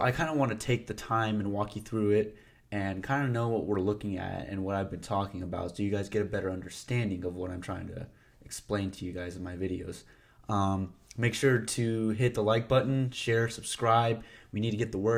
kind of want to take the time and walk you through it and kind of know what we're looking at and what I've been talking about so you guys get a better understanding of what I'm trying to explain to you guys in my videos. Make sure to hit the like button, share, subscribe. We need to get the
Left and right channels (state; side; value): identical; both; correlation 1.00